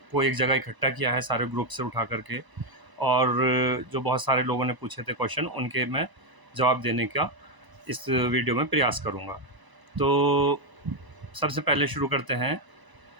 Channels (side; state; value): left; late; 1.0 ms